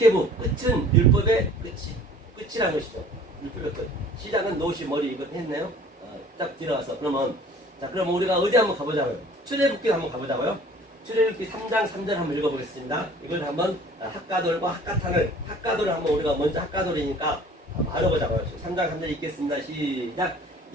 끝은 율법의 끝이라는 것이죠. 시작은 노시 머리 이거 했네요. 딱 들어가서 그러면 자 그럼 우리가 어디 한번 가보자고요. 출애굽기 한번 가보자고요. 출애굽기 3장 3절 한번 읽어보겠습니다. 이걸 한번 학가돌과 학가돌을 한번 우리가 먼저 학가돌이니까 알아보자고요. 3장 3절 읽겠습니다. 시작.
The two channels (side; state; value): both; normal; correlation 0.49